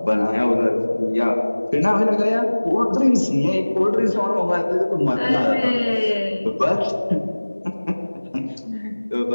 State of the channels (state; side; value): inverted; both; correlation -1.00